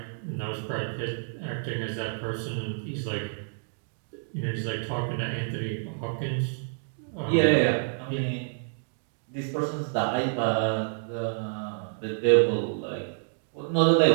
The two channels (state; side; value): silent; left; digital silence